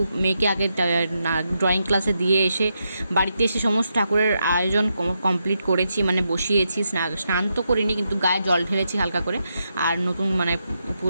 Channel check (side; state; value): both; inverted; correlation -0.83